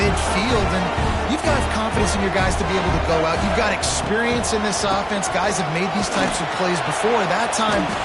and you've got confidence in your guys to be able to go out. You've got experience in this offense. Guys have made these types of plays before. That time,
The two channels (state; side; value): identical; both; correlation 1.00